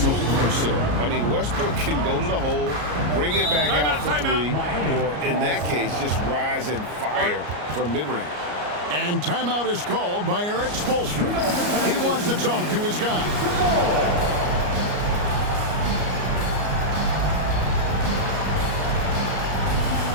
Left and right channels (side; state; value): left; late; 34 ms